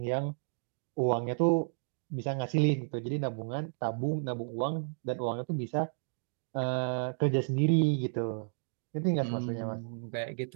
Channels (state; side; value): silent; left; digital silence